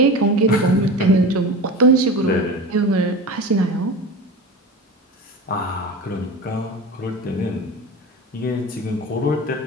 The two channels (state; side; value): normal; both; correlation 0.30